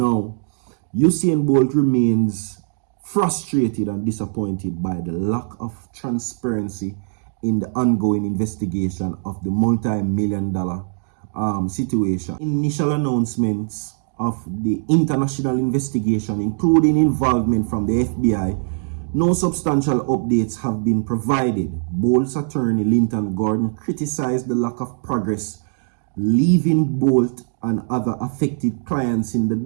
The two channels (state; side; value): silent; left; digital silence